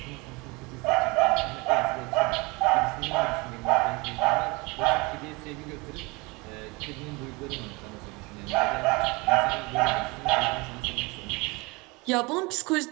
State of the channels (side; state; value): left; quieter; 26.0 dB